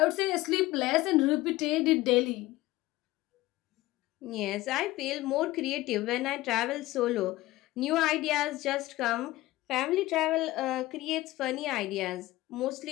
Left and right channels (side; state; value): right; quieter; 18.0 dB